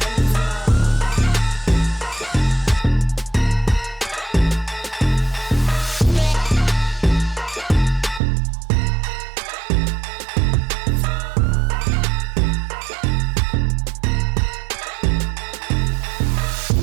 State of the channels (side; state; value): left; drops out; at 8.2 s